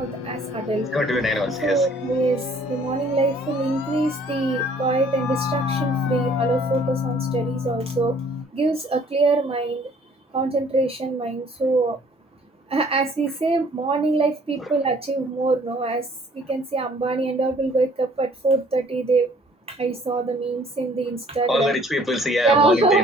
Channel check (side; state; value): both; normal; correlation 0.57